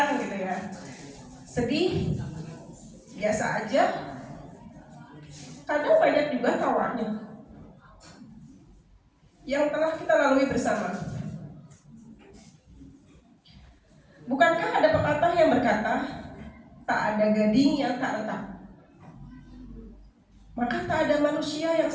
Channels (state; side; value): identical; both; correlation 1.00